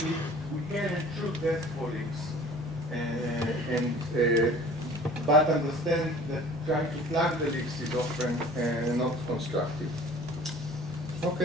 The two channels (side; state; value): both; normal; correlation 0.47